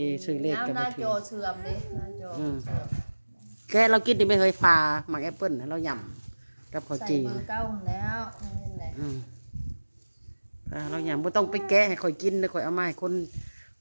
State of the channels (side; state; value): both; inverted; correlation -1.00